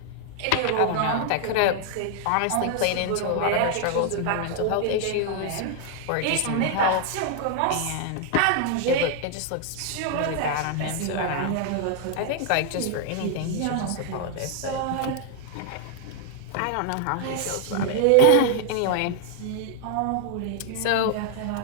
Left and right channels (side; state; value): both; different; correlation 0.00